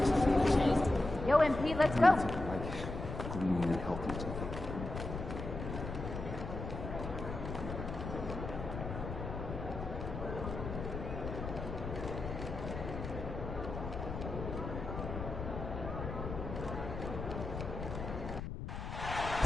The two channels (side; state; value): left; noise; rumble, 6 dB below the sound